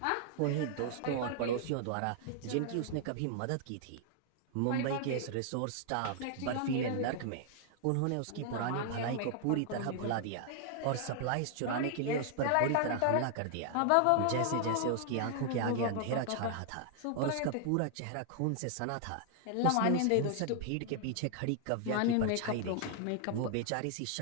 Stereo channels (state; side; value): different; both; correlation 0.00